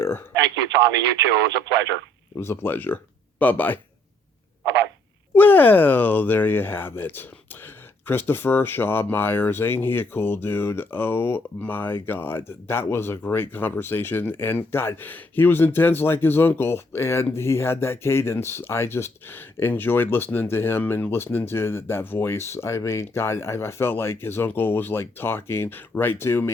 Thank you, Tommy. You too. It was a pleasure. It was a pleasure. Bye-bye. Bye-bye. Well, there you have it. Christopher Shaw Myers, ain't he a cool dude? Oh my God, that was a great conversation. And God, he was intense like his uncle, and he had that cadence. I just enjoyed listening to him and listening to that voice. I mean, God, I felt like his uncle was like talking right to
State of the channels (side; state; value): both; normal; correlation 0.68